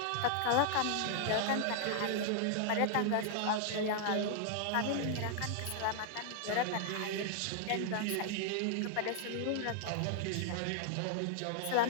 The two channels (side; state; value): both; different; correlation 0.00